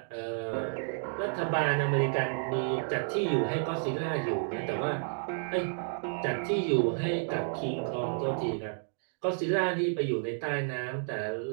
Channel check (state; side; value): silent; left; digital silence